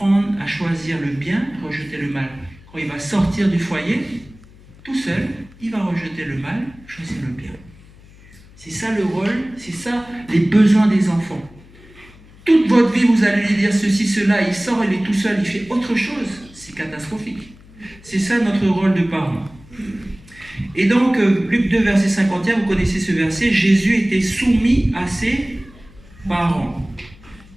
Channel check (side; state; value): left; noise; hum, 23 dB below the sound